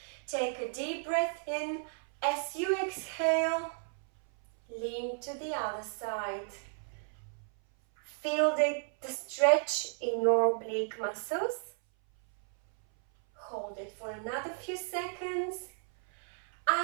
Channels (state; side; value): silent; left; 56 dB below the other